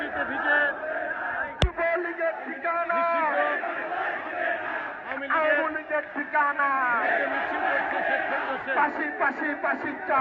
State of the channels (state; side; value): identical; both; correlation 1.00